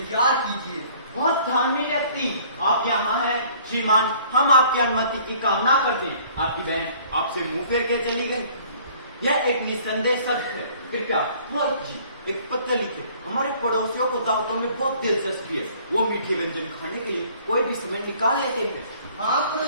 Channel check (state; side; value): inverted; both; correlation -0.55